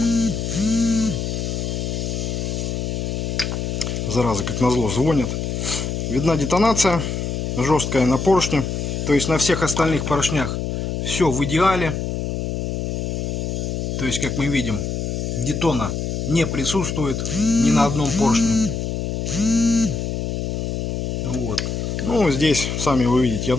зараза, как назло, звонит. Видна детонация жесткая на поршне. То есть на всех остальных поршнях все в идеале. То есть, как мы видим, детона не присутствует ни на одном поршне. Вот. Ну, здесь, сами вы видите, я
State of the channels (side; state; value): left; noise; hum, 2 dB below the sound